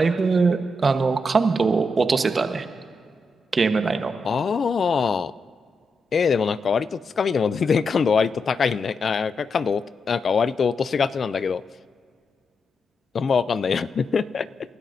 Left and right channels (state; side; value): normal; both; correlation 0.84